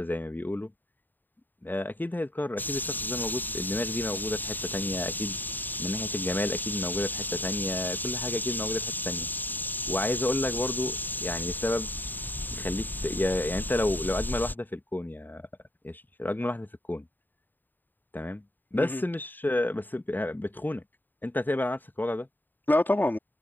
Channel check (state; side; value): late; right; 0.090 ms